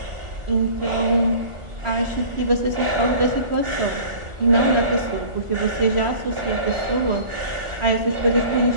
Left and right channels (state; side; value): late; left; 1.4 ms